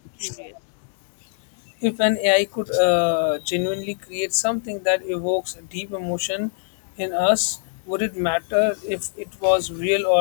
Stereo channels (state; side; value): silent; right; digital silence